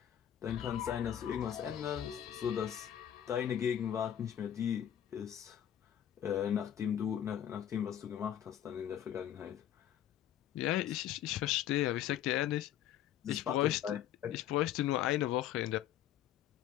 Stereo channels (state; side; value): quieter; right; 10.7 dB